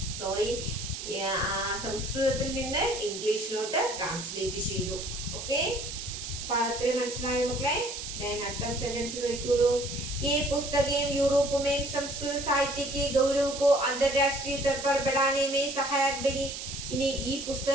സംസ്കൃതത്തിൽ നിന്ന് ഇംഗ്ലീഷിലോട്ട് ട്രാൻസ്ലേറ്റ് ചെയ്തു. ഓക്കെ. അപ്പൊ അത്രയും മനസ്സിലായോ മക്കളെ? അടുത്ത सेंटेंस നോക്കിയോളൂ. ये पुस्तकें यूरोप में संस्कृत साहित्य के गौरव को अंतरराष्ट्रीय स्तर पर बढ़ाने में सहायक बनी. ഇനി ഈ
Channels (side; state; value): right; noise; hiss, 7 dB below the sound